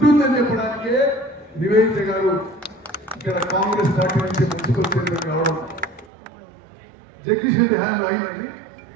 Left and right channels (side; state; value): left; drops out; at 6.1 s